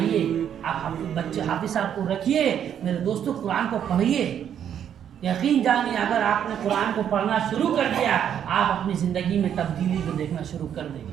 آپ بچے حافظ صاحب کو رکھیے. میرے دوستوں قرآن کو پڑھیے. یقین جانیے اگر آپ نے قرآن کو پڑھنا شروع کر دیا آپ اپنی زندگی میں تبدیلی کو دیکھنا شروع کر دیں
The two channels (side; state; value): left; quieter; 9.2 dB